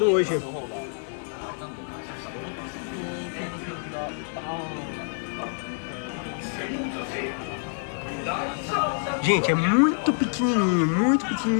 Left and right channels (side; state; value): right; silent; 56 dB below the other